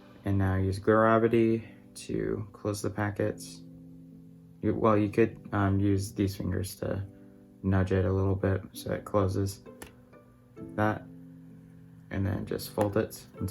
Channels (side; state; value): both; identical; correlation 1.00